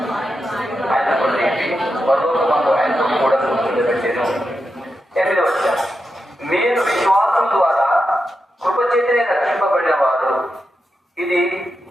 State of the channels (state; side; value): normal; both; correlation 0.87